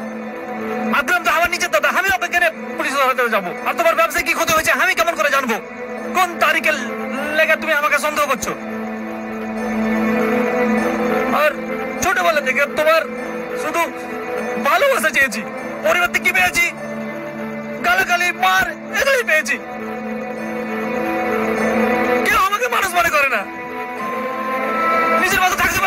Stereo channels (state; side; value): identical; both; correlation 1.00